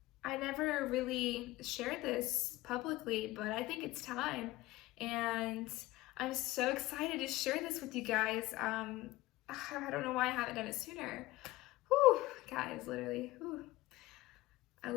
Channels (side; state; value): right; quieter; 18.2 dB